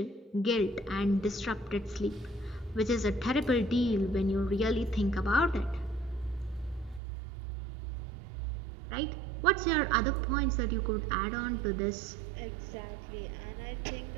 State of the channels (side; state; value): left; drops out; at 7.0 s